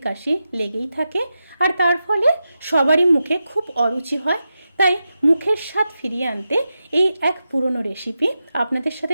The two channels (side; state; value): both; inverted; correlation -0.90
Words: কাশি লেগেই থাকে, আর তার ফলে সবারই মুখে খুব অরুচি হয়। তাই মুখের স্বাদ ফিরিয়ে আনতে এই এক পুরনো রেসিপি আপনাদের